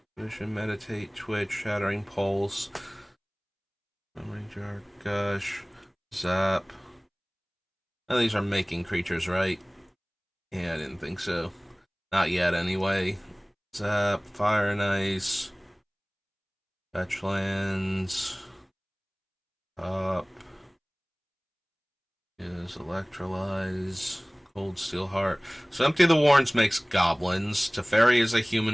Vision, meditate, twitch, shattering pulse, memory jar, gush, zap. Now these are making creatures, right? Yeah, I didn't think so. Not yet, anyway. Zap, fire and ice, fetch lands, up is electrolyze, cold steel heart. So Empty the Warrens makes goblins. Teferi is a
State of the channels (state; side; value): identical; both; correlation 1.00